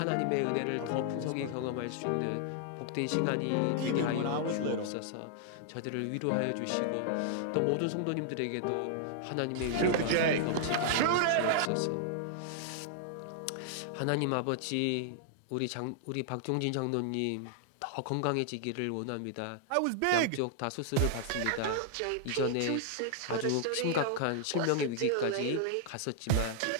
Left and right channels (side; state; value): both; different; correlation -0.01